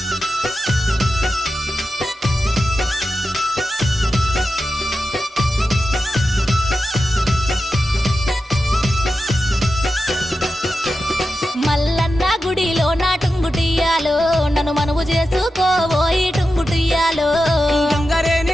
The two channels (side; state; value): both; normal; correlation 0.91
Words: మల్లన్న గుడిలో నా టుంగుటియ్యాలో నన్ను మనవు చేసుకోబోయి టుంగుటియ్యాలో